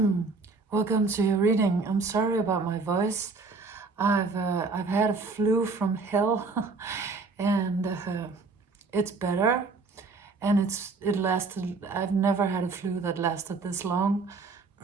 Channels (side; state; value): left; quieter; 4.1 dB